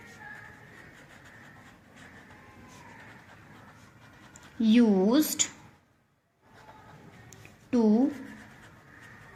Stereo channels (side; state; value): both; identical; correlation 1.00